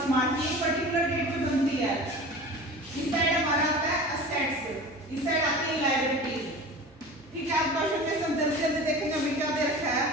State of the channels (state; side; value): normal; both; correlation 0.37